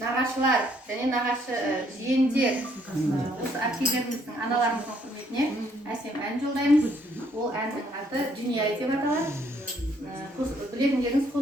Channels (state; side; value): normal; both; correlation 0.67